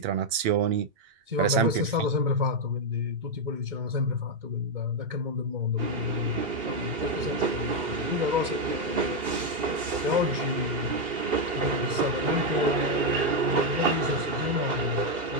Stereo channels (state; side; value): late; left; 2.8 ms